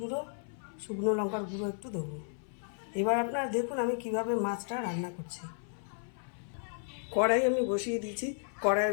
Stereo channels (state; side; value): silent; right; 55 dB below the other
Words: শুকনো লঙ্কার গুঁড়ো একটু দেবো। এবার আপনারা দেখুন আমি কিভাবে মাছটা রান্না করছি। কড়াই আমি বসিয়ে দিয়েছি,